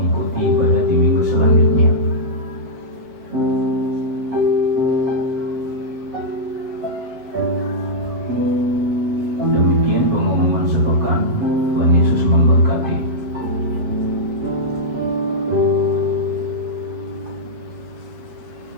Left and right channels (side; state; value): left; late; 7.9 ms